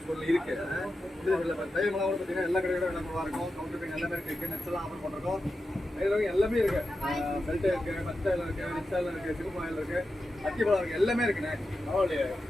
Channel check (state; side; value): normal; both; correlation 0.90